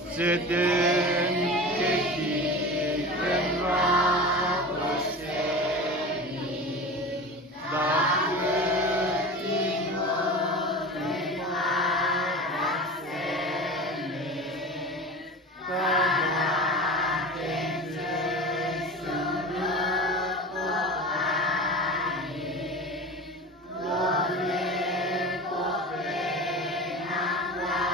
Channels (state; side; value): normal; both; correlation 0.32